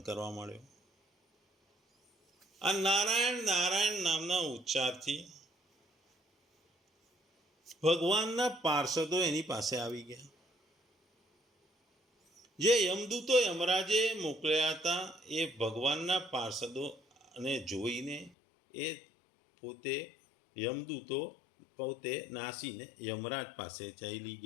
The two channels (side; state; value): right; drops out; at 18.3 s